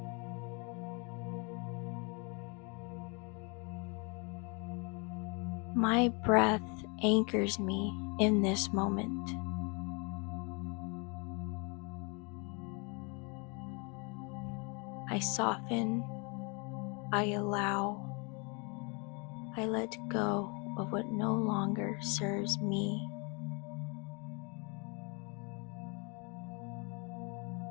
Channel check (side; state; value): right; quieter; 32.3 dB